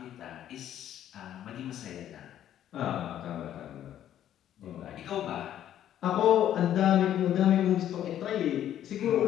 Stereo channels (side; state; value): right; quieter; 11.2 dB